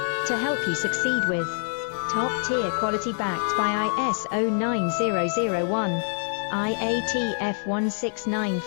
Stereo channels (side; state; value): right; silent; 61 dB below the other